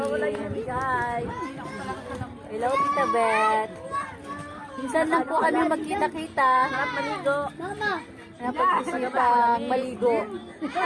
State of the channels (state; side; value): identical; both; correlation 1.00